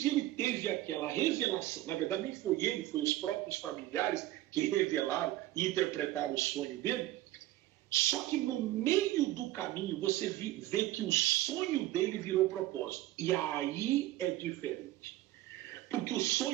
e ele teve aquela revelação. Na verdade, nem foi ele, foi os próprios familiares que revelaram e interpretaram o sonho dele. Só que no meio do caminho você vê que o sonho dele virou propósito. E aí é diferente. Porque o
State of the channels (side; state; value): left; quieter; 15.6 dB